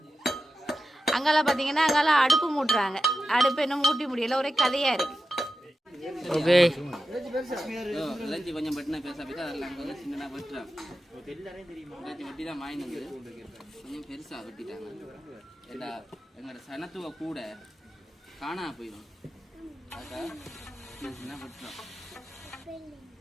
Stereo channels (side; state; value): both; normal; correlation 0.91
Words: அங்கெல்லாம் பார்த்தீங்கன்னா அங்கெல்லாம் அடுப்பு மூட்டுறாங்க. அடுப்பு என்ன மூட்டி முடியல. ஒரே கதையா இருக்கு. ஓகே கொஞ்சம் பட்டினா பேச போய் அதெல்லாம் அங்கே வந்து சின்னதாக வெட்டுறாங்க. வெட்டி தான் வாங்கினது கொஞ்சம் பெருசாக வெட்டிட்டாங்க. எல்லா எங்களோட சனத்துவ கூட காணா போயிடும். அதுக்காக சின்ன வெட்டுறோம்.